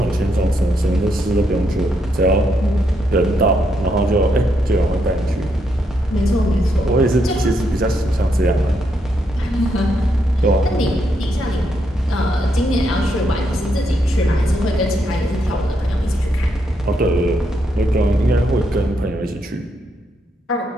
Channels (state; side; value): normal; both; correlation 0.78